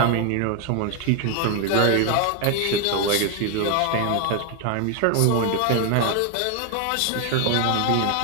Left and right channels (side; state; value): both; different; correlation 0.01